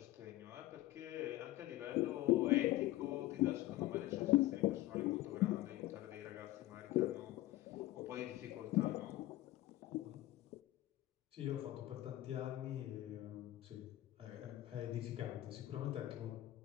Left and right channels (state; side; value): quieter; right; 16.0 dB